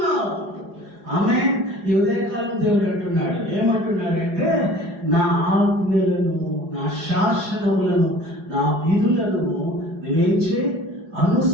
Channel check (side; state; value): left; late; 4.8 ms